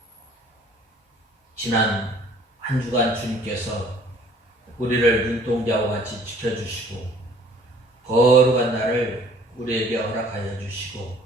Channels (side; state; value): both; normal; correlation 0.55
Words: 지난 한 주간 주님께서 우리를 눈동자와 같이 지켜주시고 거룩한 날을 우리에게 허락하여 주시고